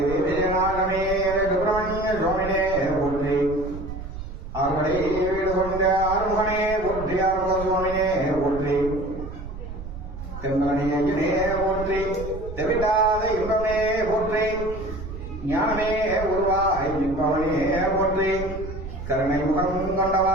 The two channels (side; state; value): right; noise; rumble, 10 dB below the sound